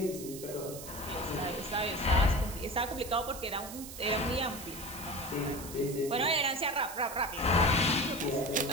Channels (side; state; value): right; noise; hiss, 12 dB below the sound